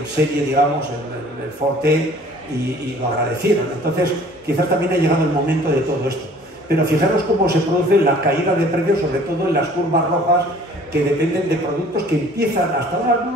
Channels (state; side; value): normal; both; correlation 0.52